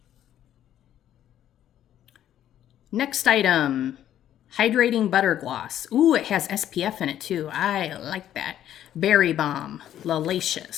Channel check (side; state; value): right; quieter; 11.3 dB